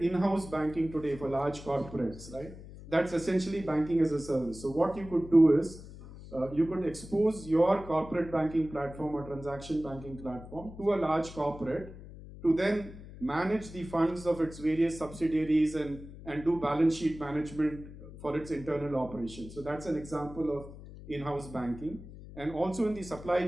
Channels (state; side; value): noise; left; hum, 15 dB below the sound